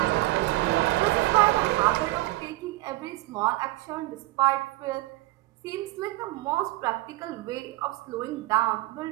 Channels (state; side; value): quieter; left; 18.9 dB